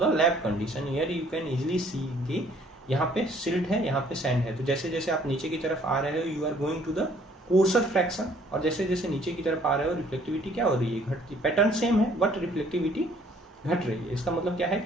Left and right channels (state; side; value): normal; both; correlation 0.60